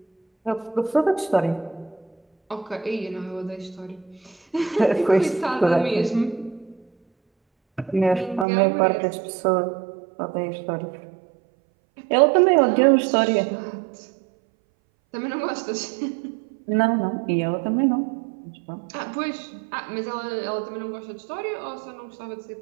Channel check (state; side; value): drops out; left; at 8.5 s